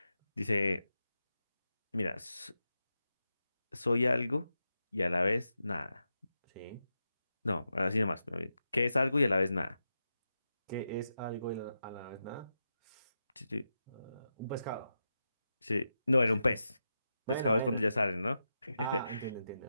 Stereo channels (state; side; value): inverted; both; correlation -0.89